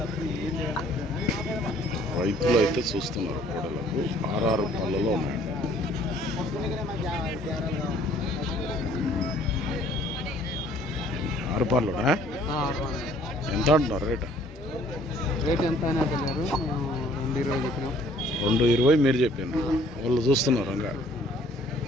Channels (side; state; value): both; normal; correlation 0.58